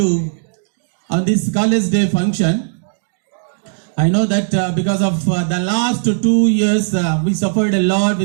on this college day function. I know that because of the last 2 years we suffered a lot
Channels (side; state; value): left; silent; digital silence